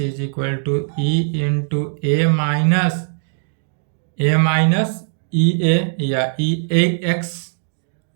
equal to e into a minus e a या e a x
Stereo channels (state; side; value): silent; left; digital silence